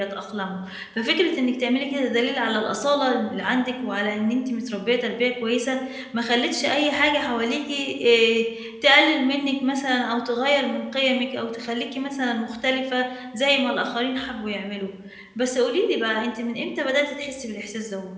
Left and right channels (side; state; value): both; identical; correlation 1.00